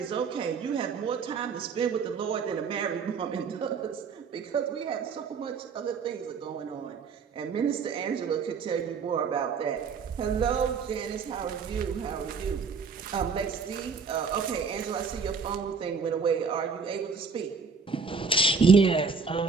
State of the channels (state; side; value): quieter; left; 5.2 dB